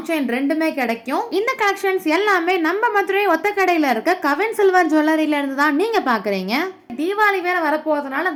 chain ரெண்டுமே கிடைக்கும். இந்த கலெக்ஷன்ஸ் எல்லாமே நம்ம மதுரை ஒத்த கடையில இருக்க கவின் சில்வர் ஜுவல்லரியில இருந்து தான் நீங்க பாக்குறீங்க. தீபாவளி வேற வரப்போறதுனால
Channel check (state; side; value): identical; both; correlation 1.00